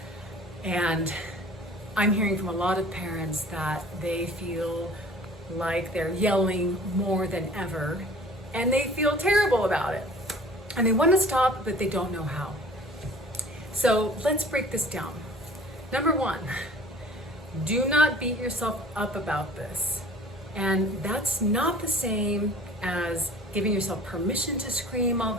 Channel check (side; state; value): both; normal; correlation 0.48